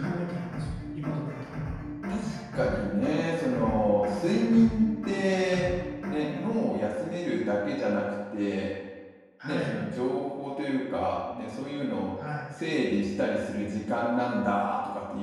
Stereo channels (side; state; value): both; identical; correlation 1.00